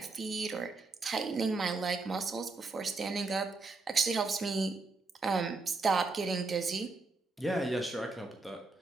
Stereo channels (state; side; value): quieter; left; 3.7 dB